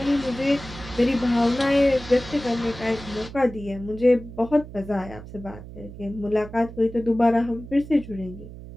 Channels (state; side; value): noise; right; hum, 14 dB below the sound